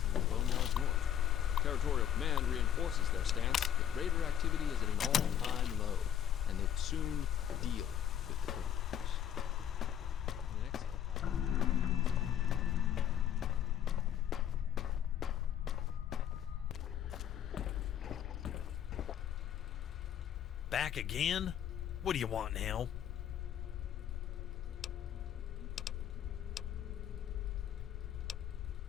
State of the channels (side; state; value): right; quieter; 10.0 dB